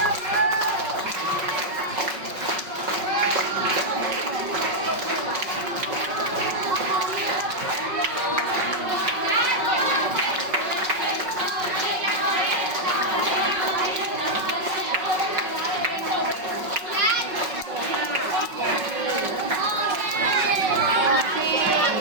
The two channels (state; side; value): late; left; 5.4 ms